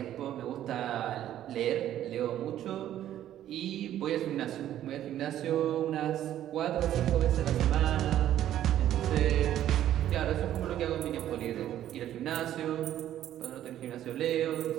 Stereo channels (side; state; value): left; quieter; 11.9 dB